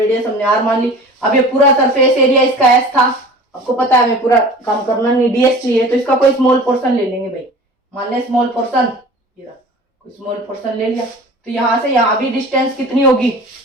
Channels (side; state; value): both; normal; correlation 0.41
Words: हमने आर मान ली। अब ये पूरा सरफेस एरिया इसका एस था, आपको पता है हमें पूरा काम करना नहीं, डीएस चाहिए, तो इसका कोई स्मॉल पोर्शन ले लेंगे भाई, मान लें स्मॉल पोर्शन, कोई स्मॉल पोर्शन ले लिया, तो यहाँ से यहाँ भी डिस्टेंस कितनी होगी,